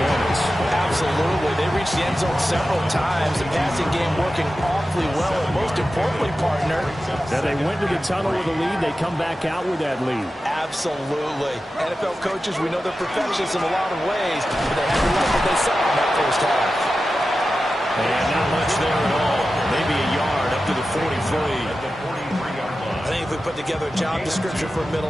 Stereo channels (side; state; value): both; normal; correlation 0.93